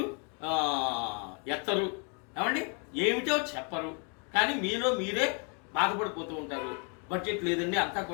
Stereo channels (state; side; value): quieter; right; 37.5 dB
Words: ఎత్తరు, ఏమండి ఏమిటో చెప్పరు. కానీ మీలో మీరే బాధపడిపోతూ ఉంటారు. బడ్జెట్ లేదండి, అంతా